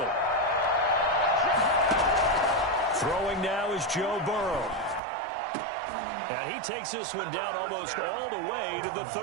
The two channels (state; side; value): drops out; left; at 5.0 s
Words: Throwing now is Joe Burrow. And he takes this one down almost all the way to the